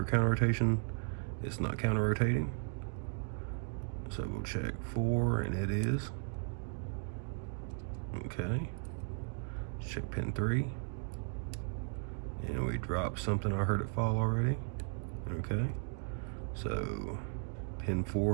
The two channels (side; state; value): left; silent; 54 dB below the other